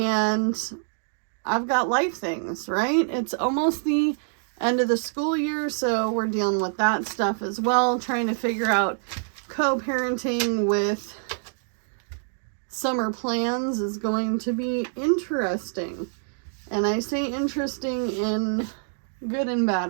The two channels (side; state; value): left; silent; digital silence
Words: I've got life things, right? It's almost the end of the school year, so we're dealing with that stuff as well, trying to figure out co-parenting with summer plans is going to be interesting. And I say interesting in good and